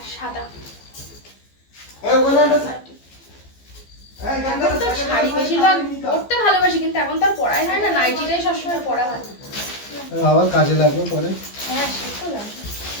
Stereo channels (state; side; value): late; right; 15 ms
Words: সাদা। এখন তো শাড়ি বেশিরভাগ পরতে ভালোবাসি, কিন্তু এখন তো আর পরাই হয় না, নাইটিটাই সবসময় পরা হয়। আবার কাজে লাগবে পরে। হ্যাঁ সে তো লাগবে।